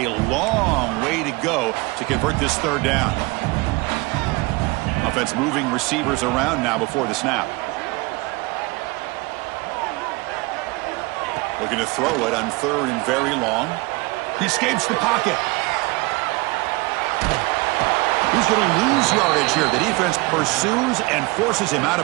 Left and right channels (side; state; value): left; quieter; 24.3 dB